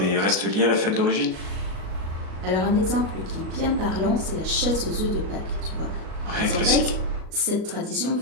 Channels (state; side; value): late; left; 37 ms